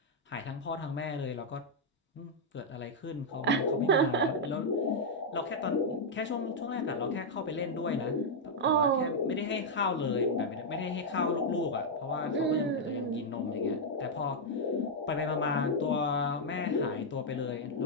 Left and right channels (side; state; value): both; normal; correlation -0.03